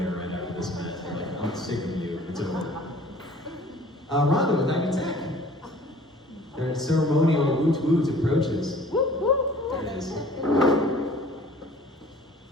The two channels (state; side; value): normal; both; correlation 0.50